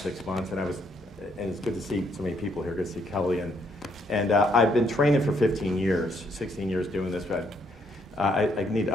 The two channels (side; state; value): both; normal; correlation 0.71